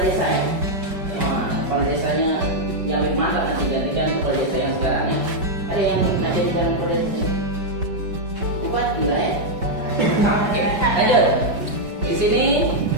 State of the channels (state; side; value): late; left; 5.2 ms